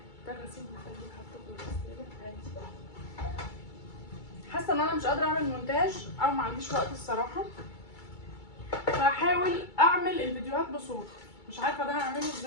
ده غسيل مخلي حاطه في الغساله عادي. حاسه ان انا مش قادره اعمل مونتاج او ما عنديش وقت الصراحه، فهحاول اعمل الفيديوهات بصوت. مش عارفه ده هعمله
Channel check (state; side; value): late; right; 2.3 ms